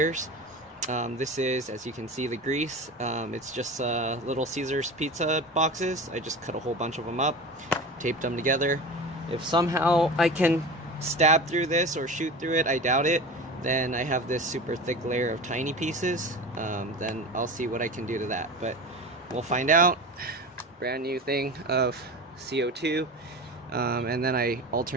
This is, as you can see, the grease. It's just Little Caesars pizza boxes. I just cut a whole bunch of them up, taped them together. If somehow I can stab through this or shoot through it, I doubt it, then I have this super thick layer of tiny pieces. Then I'll see what I can do to that, but we'll find out. Brand new thing of CO2, and then I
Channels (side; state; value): both; normal; correlation 0.31